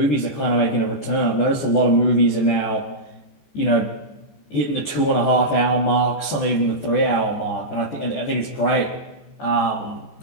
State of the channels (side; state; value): right; late; 14 ms